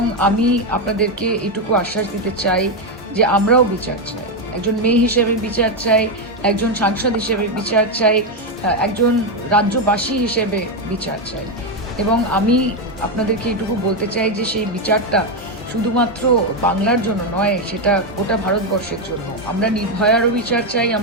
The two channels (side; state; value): both; normal; correlation 0.06